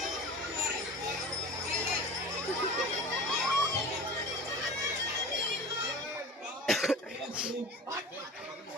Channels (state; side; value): normal; both; correlation 0.35